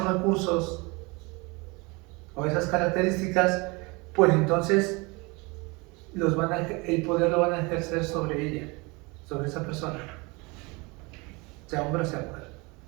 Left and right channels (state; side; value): quieter; left; 26.7 dB